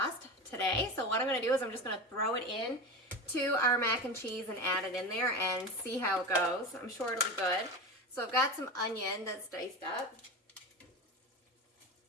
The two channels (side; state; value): both; normal; correlation 0.25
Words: today. So what I'm gonna do is I'm just gonna throw it in to our mac and cheese and add it in there and see how it goes. I'm sure it'll be good. So I've got some onion that's diced up.